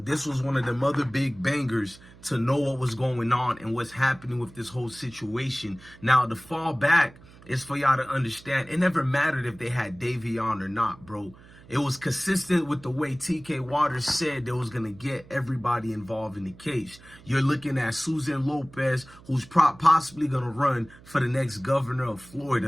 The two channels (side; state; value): right; noise; hum, 22 dB below the sound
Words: was one of them other big bangers to know what was going on and what's happening with this whole situation. Now, the fall back is for y'all to understand. It never mattered if they had Darrion or not, bro. It was consistent with the way TK Waters said they was going to get everybody involved in the case. You're looking at Susan Lopez, who's possibly going to run for the next governor of